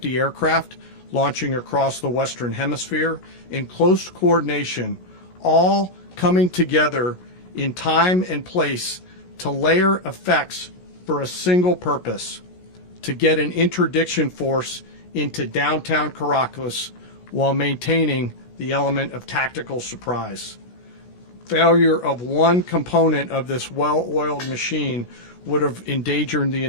aircraft launching across the Western Hemisphere in close coordination, all coming together in time and place to layer effects for a single purpose: to get an interdiction force into downtown Caracas while maintaining the element of tactical surprise. Failure of one component of this well-oiled machine would have endangered the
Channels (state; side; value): late; right; 16 ms